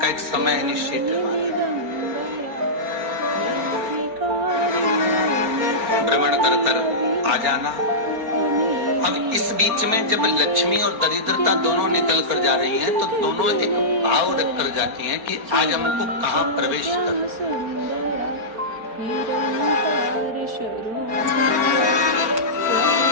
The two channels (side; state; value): left; late; 4.4 ms